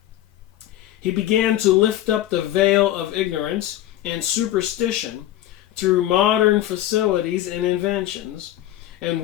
he began to lift up the veil of ignorance and superstition through modern facilities and inventions, and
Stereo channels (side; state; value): right; quieter; 13.5 dB